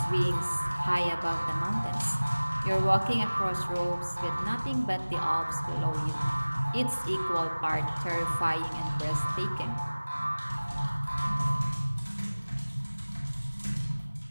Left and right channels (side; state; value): both; inverted; correlation -1.00